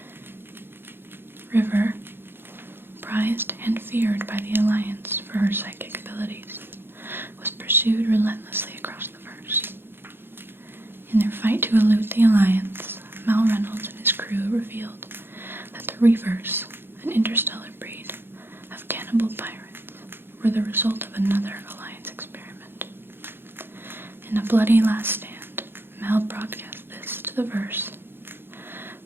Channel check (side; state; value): left; late; 0.10 ms